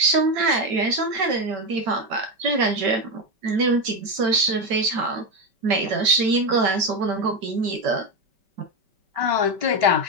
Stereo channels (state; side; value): late; left; 5.2 ms